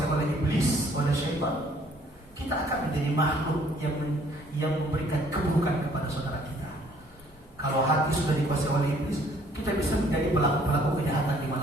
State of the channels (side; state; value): both; normal; correlation 0.60